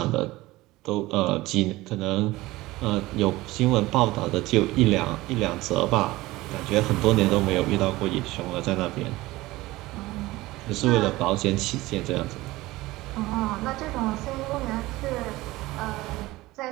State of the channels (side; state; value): left; quieter; 18.9 dB